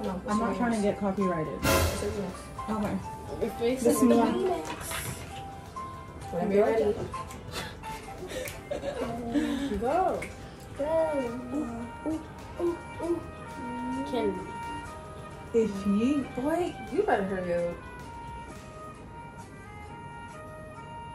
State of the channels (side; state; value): both; identical; correlation 1.00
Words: No, I'm not trying to get copyrighted. Okay. Your face This is one. Whenever you're ready. Go. Candy. If you Boy, you better hurry up.